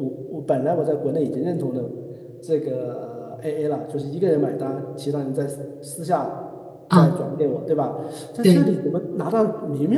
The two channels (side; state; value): both; identical; correlation 1.00